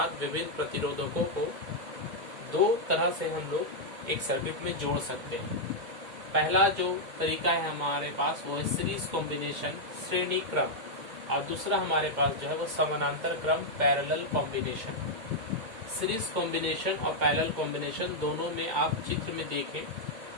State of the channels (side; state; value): left; late; 2.2 ms